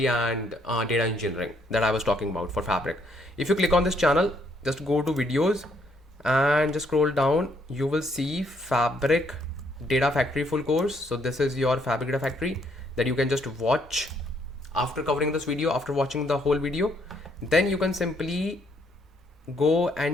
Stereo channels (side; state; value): both; normal; correlation 0.70